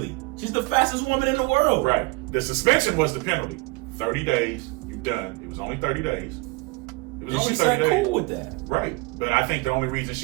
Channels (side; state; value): left; quieter; 24.8 dB